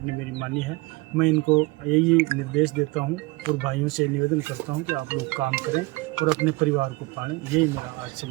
ने मेरी मानी है। मैं इनको यही निर्देश देता हूं और भाइयों से निवेदन करता हूं कि आप लोग काम करें और अपने परिवार को पालें। यही मेरा आज से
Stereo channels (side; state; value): left; quieter; 23.7 dB